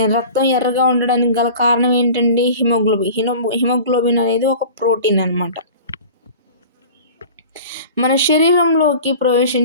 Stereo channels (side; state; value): both; inverted; correlation -0.39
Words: రక్తం ఎర్రగా ఉండడానికి గల కారణం ఏంటండి, హిమోగ్లోబిన్ అనేది ఒక ప్రోటీన్ అనమాట. మన శరీరంలోకి